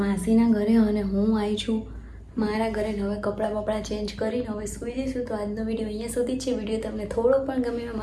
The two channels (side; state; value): both; identical; correlation 1.00